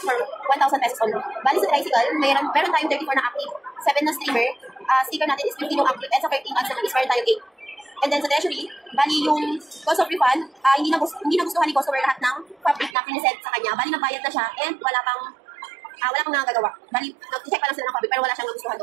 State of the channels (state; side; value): drops out; left; at 13.0 s